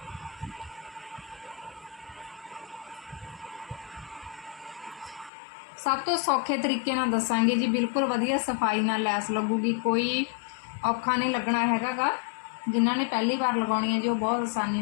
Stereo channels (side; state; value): right; drops out; at 5.3 s